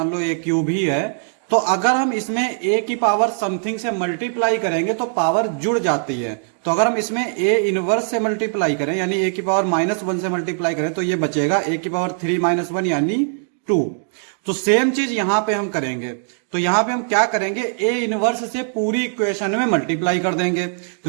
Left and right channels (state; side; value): silent; left; digital silence